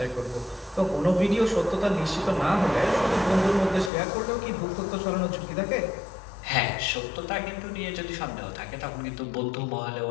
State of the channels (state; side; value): drops out; right; at 3.9 s